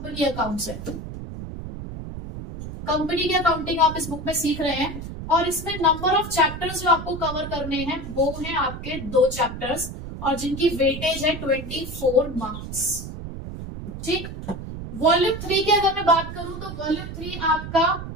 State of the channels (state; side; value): noise; right; rumble, 9 dB below the sound